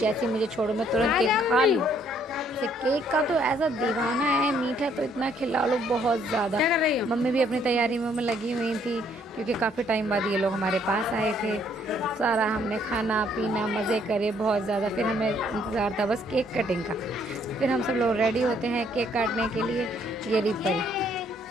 मुझे छोड़ो मैं तुरंत केक खा लूँ। इसे केक का तो ऐसा दीवाना है, मीठा तो इतना खिला लो बहुत ज़्यादा। मम्मी भी अपनी तैयारी में लगी हुई थी, क्योंकि काफ़ी टाइम बाद ये लोग हमारे पास आए थे। सारा हमने खाना पीना मज़े करे बहुत ज़्यादा। फिर हमें इंतज़ार था बस केक कटिंग का। फिर हम सब लोग रेडी होते हैं केक काटने के लिए। ये रिपर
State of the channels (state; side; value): normal; both; correlation 0.66